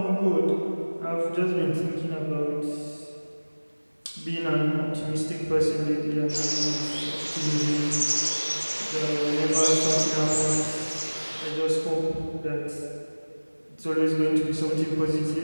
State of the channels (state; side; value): inverted; both; correlation -1.00